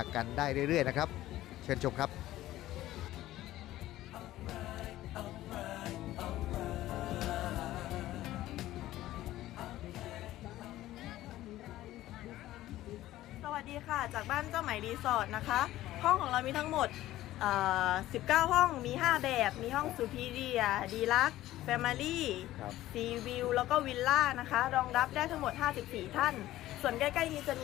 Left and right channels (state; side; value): quieter; right; 15.0 dB